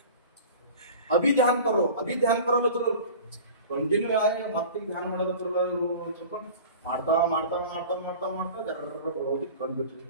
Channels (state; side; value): inverted; both; correlation -0.39